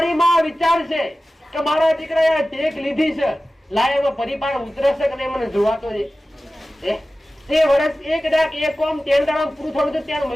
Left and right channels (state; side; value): normal; both; correlation 0.96